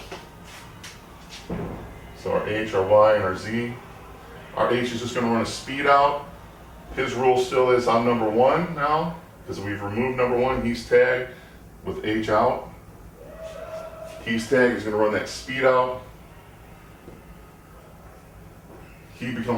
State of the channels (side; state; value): both; identical; correlation 1.00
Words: So our H, our Y, and our Z. Our H is just going to run a speed out. His rule still is I'm number one now, because we've removed number one. He's tagged with H out. He's tagged, he's going to run that speed out. He